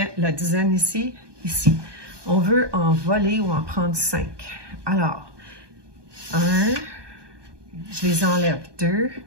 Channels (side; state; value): left; late; 1.2 ms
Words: la dizaine ici, ici. On veut en voler ou en prendre 5. Alors, 1, je les enlève. 2,